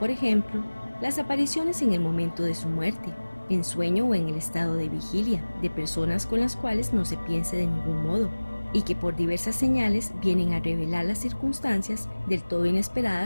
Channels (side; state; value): both; inverted; correlation -1.00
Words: ejemplo, las apariciones en el momento de su muerte, en sueño o en el estado de vigilia, de personas con las cuales no se piense de ningún modo, y que por diversas señales vienen a revelar las circunstancias del todo